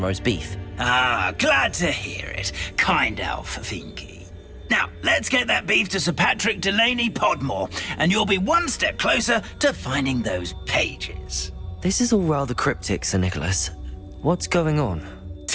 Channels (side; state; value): both; identical; correlation 1.00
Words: roast beef. Ah, glad to hear it. Kind elf, Finky. Now, let's get that beef to Sir Patrick Delaney Podmore, and you'll be one step closer to finding those pages. This is all rather cryptic, Sir Nicholas. What's going on?